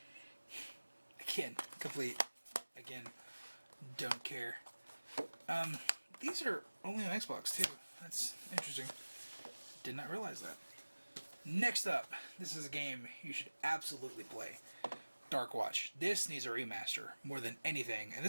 Again, complete. Again, don't care. These are only on Xbox too. That's interesting. Did not realize that. Next up, this is a game you should absolutely play. Dark Watch. This needs a remaster more than anything. And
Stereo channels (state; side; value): inverted; both; correlation -1.00